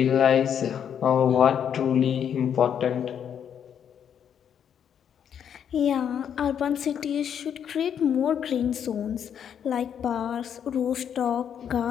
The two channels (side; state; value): right; quieter; 8.5 dB